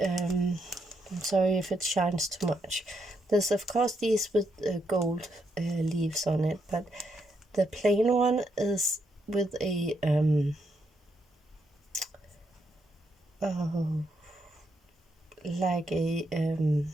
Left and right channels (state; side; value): normal; both; correlation 0.79